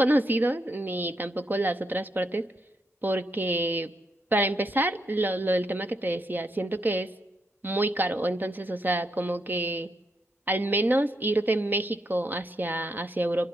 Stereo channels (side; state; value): both; normal; correlation 0.79